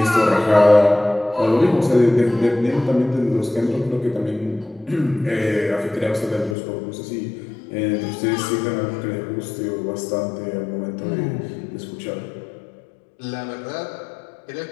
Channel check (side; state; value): right; drops out; at 6.6 s